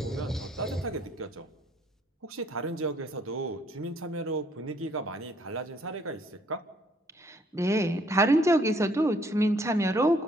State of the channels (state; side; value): normal; both; correlation 0.65